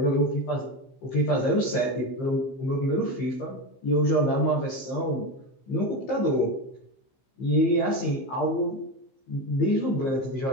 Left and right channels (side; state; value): right; late; 15 ms